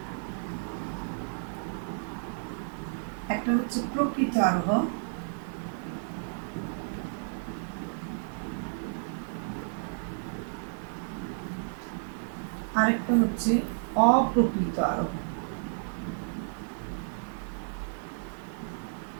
একটা হচ্ছে প্রকৃত আরোহ, আরেকটা হচ্ছে অপ্রকৃত আরোহ।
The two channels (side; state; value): left; silent; digital silence